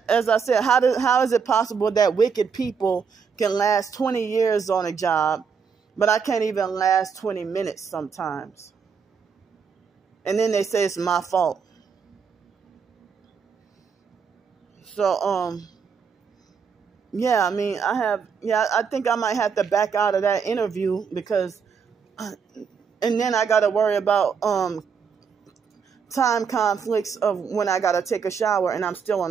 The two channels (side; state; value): left; quieter; 6.2 dB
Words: as I said, how is it possible that wicked people can last 20 years on a job, but I can't even last 20 minutes sometimes? And then they say it's my fault. So, yeah, I mean, I think I might have to back out of that interview because, and then I got to worry about time conflicts of when I got to take a shower and I'm still on